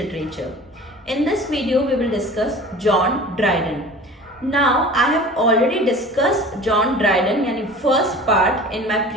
In this video we will discuss John Dryden. Now I have already discussed John Dryden यानी first part in my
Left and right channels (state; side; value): normal; both; correlation 0.41